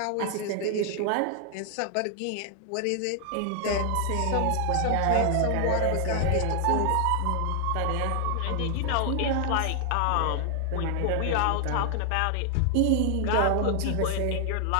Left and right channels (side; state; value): both; different; correlation 0.00